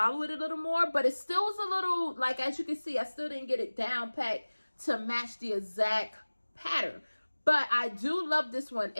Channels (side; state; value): both; inverted; correlation -1.00